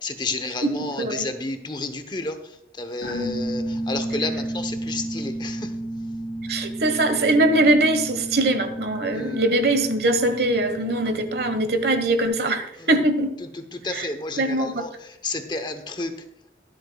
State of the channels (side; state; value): both; normal; correlation 0.37